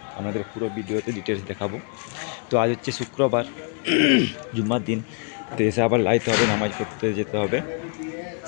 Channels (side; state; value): right; quieter; 39.3 dB